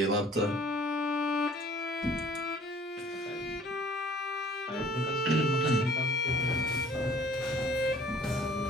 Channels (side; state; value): both; normal; correlation 0.54